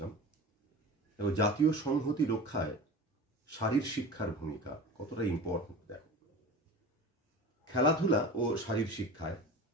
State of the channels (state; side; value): normal; both; correlation 0.34